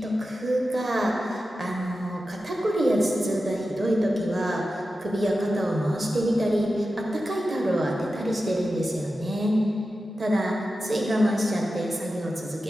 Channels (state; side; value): normal; both; correlation 0.92